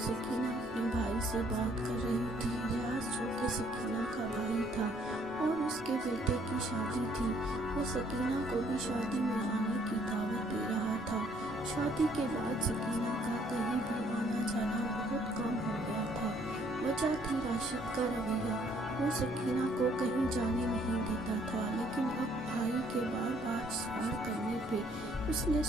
اپنے بھائی سے بات کر رہی تھی۔ ریاض، جو کہ سکینہ کا بھائی تھا اور اس کے بیٹے کی شادی تھی، وہ سکینہ کو بھی شادی میں آنے کی دعوت دے رہا تھا۔ شادی کے بعد سکینہ کا کہیں بھی آنا جانا بہت کم ہو گیا تھا۔ وجہ تھی راشد کا رویہ، وہ سکینہ کو کہیں جانے نہیں دیتا تھا، لیکن اب بھائی کے بار بار سوال کرنے پہ اس نے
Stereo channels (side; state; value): both; normal; correlation 0.64